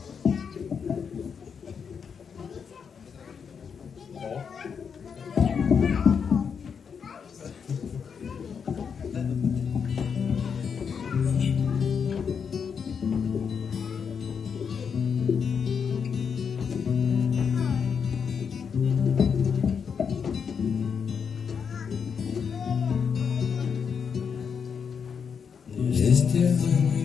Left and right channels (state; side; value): quieter; right; 6.6 dB